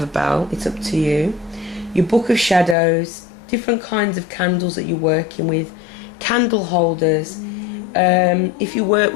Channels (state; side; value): drops out; right; at 2.8 s